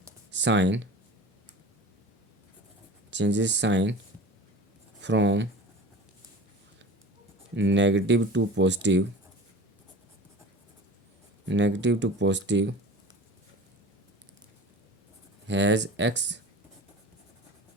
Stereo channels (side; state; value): both; normal; correlation 0.37